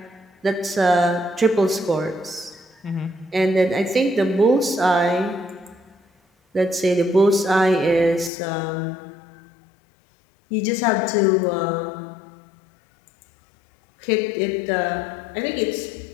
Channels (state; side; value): drops out; right; at 8.3 s